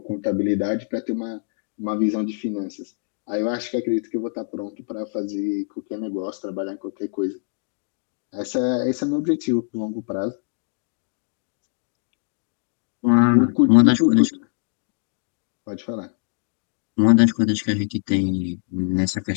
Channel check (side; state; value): right; silent; 63 dB below the other